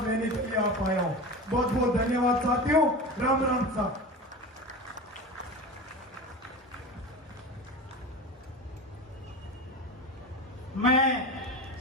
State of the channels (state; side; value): normal; both; correlation 0.28